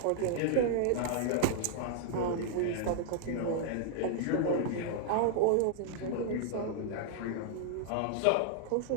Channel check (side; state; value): both; different; correlation -0.01